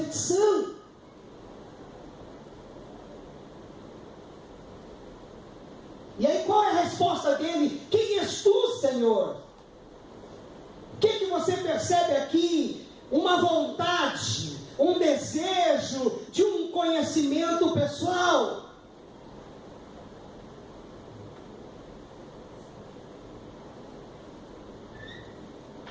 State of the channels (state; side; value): identical; both; correlation 1.00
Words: E aí qual é a resposta dele? Quem és tu, Senhor? O que você percebe aqui? Uma vontade, um desejo de um conhecimento pessoal.